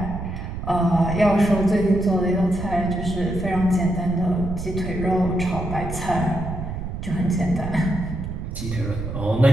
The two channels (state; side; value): noise; right; rumble, 7 dB below the sound